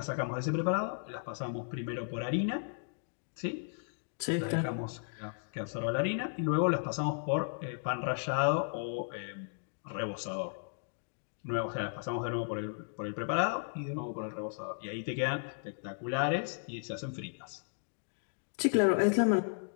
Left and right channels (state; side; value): silent; right; digital silence